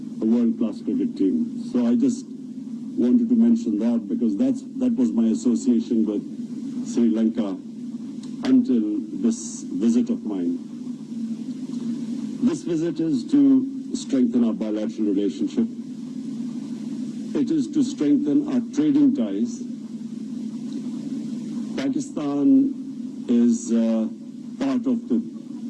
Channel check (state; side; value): identical; both; correlation 1.00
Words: a world-class cricket team. So I just wanted to mention that because that was my association with Sri Lanka until this visit of mine. This visit is to strengthen our bilateral relationship. It is to strengthen our trading ties. Pakistan is part of the